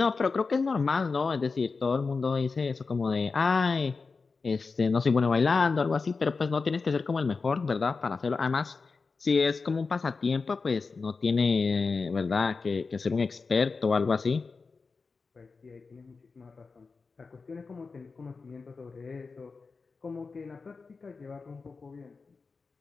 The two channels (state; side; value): quieter; right; 4.5 dB